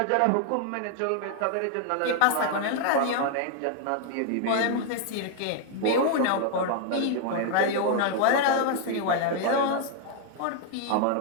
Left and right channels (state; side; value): different; both; correlation 0.00